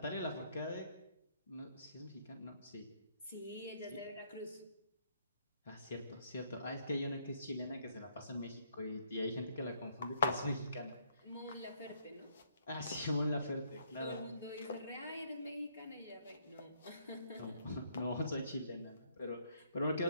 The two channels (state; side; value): inverted; both; correlation -0.68